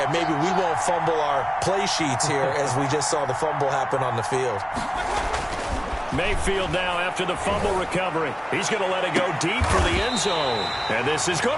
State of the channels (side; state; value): both; identical; correlation 1.00